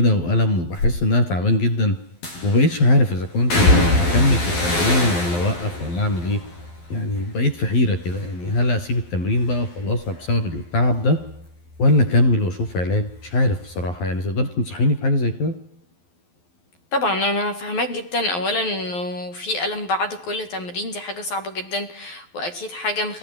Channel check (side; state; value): right; late; 12 ms